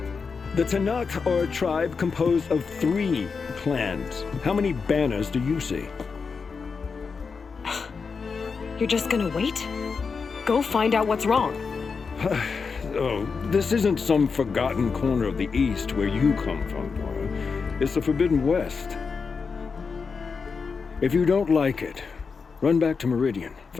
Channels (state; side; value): quieter; right; 5.2 dB